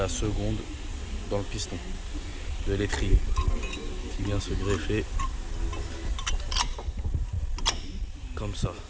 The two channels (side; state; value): both; identical; correlation 1.00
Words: seconde dans le piston de l'étrier qui vient se greffer comme ça.